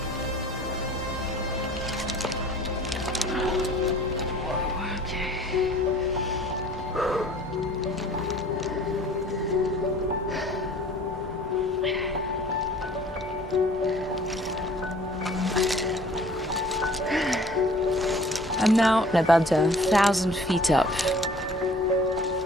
I'm now about 1,000 feet up.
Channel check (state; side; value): normal; both; correlation 0.51